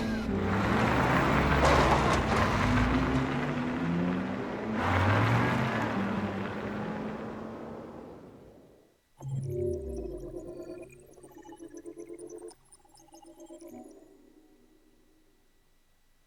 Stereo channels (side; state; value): both; identical; correlation 1.00